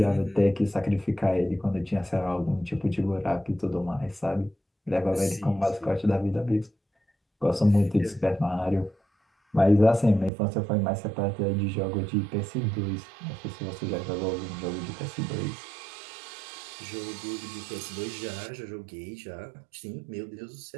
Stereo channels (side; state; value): left; drops out; at 10.3 s